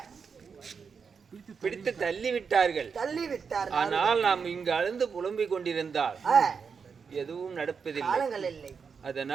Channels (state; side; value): quieter; left; 5.9 dB